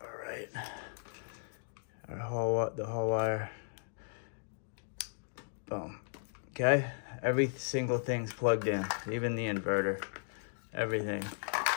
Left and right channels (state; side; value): silent; right; digital silence